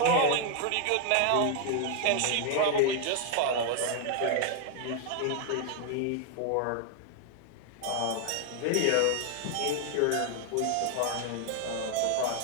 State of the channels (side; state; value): both; different; correlation 0.00